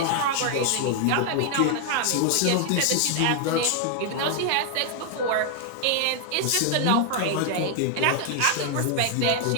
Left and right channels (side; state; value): both; different; correlation 0.00